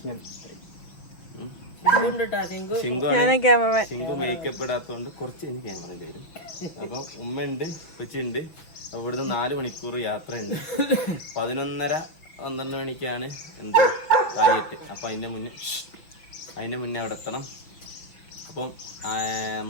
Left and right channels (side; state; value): right; late; 6.1 ms